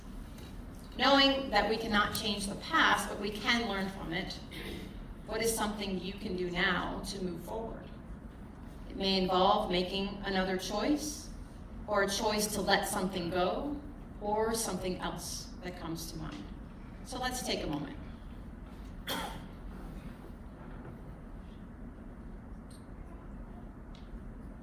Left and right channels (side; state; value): both; identical; correlation 1.00